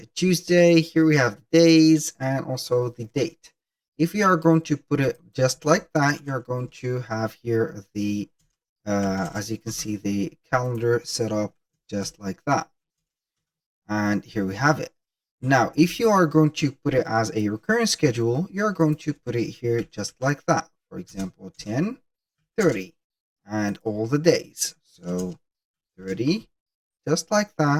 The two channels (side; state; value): both; identical; correlation 1.00